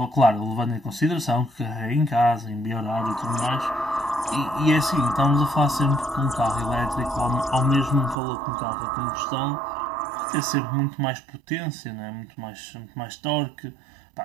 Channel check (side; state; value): left; drops out; at 8.2 s